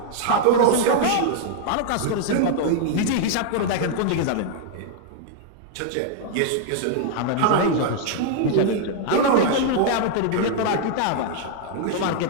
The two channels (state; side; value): different; both; correlation -0.01